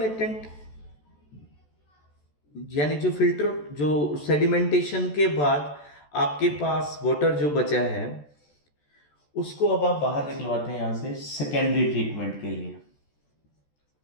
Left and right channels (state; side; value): late; right; 14 ms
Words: यानी जो फिल्टर, जो सेडिमेंटेशन के बाद आपके पास वाटर जो बचा है उसको अब आप बाहर निकलवाते हैं यहां से सेकेंडरी ट्रीटमेंट के लिए।